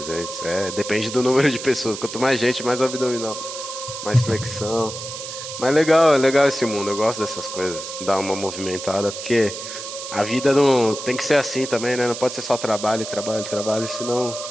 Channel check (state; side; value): noise; right; hiss, 9 dB below the sound